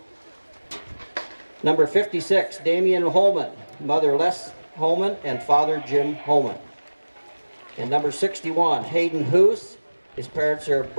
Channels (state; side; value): inverted; both; correlation -1.00